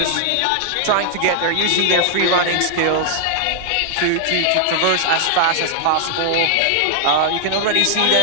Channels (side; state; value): both; different; correlation 0.00